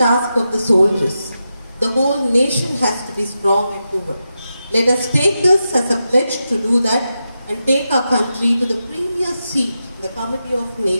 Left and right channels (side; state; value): both; inverted; correlation -0.89